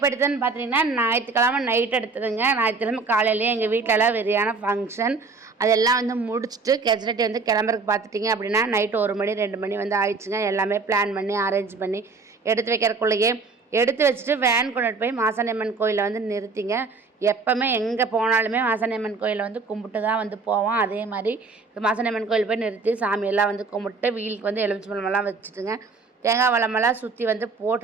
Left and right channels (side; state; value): left; quieter; 4.3 dB